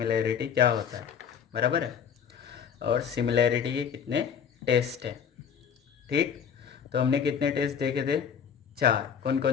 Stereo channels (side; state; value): right; quieter; 7.5 dB